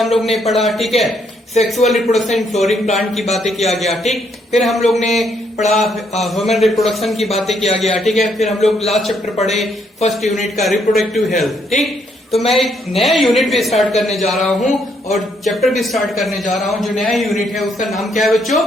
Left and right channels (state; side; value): normal; both; correlation 0.72